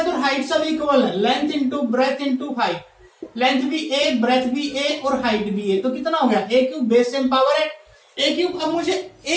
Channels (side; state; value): both; identical; correlation 1.00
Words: और हाइट सब इक्वल है, length into breadth into height, length भी ए, ब्रेथ भी ए और हाइट भी ए, तो कितना हो गया A cube, base same power है ए क्यूब। अब मुझे